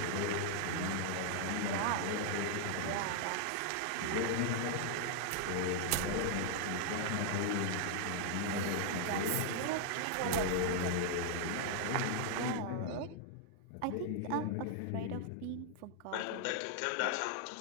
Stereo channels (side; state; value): both; different; correlation 0.00